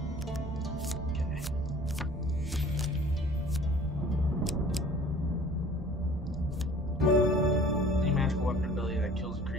Okay. Any magical weapon ability that kills a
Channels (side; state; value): both; normal; correlation 0.48